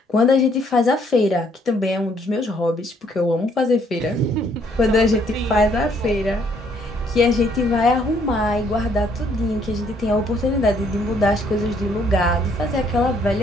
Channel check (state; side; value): normal; both; correlation 0.66